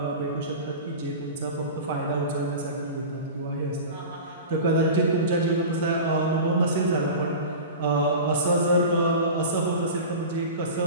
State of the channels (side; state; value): both; inverted; correlation -0.32